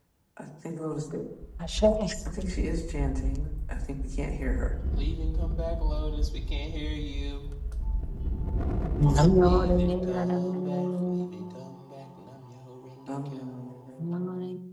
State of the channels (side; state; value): both; identical; correlation 1.00